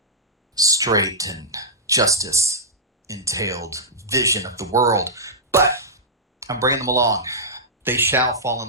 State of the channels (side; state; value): both; normal; correlation -0.12